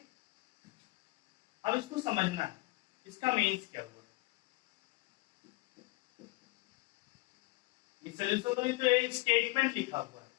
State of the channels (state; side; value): quieter; right; 23.5 dB